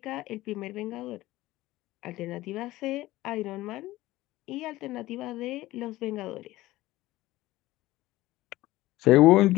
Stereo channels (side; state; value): right; quieter; 17.3 dB